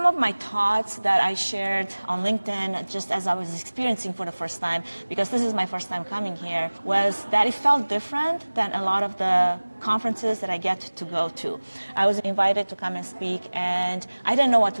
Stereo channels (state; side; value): inverted; both; correlation -1.00